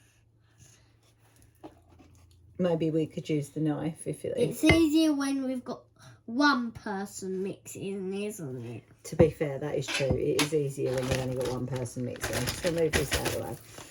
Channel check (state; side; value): identical; both; correlation 1.00